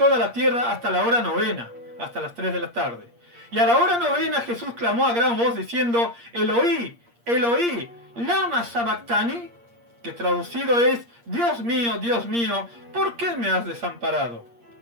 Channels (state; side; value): late; left; 8.5 ms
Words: la tierra hasta la hora novena, hasta las 3 de la tarde. Y a la hora novena Jesús clamó a gran voz diciendo: Eloí, Eloí, lama sabactani, que traducido es: Dios mío, ¿por qué me has desamparado?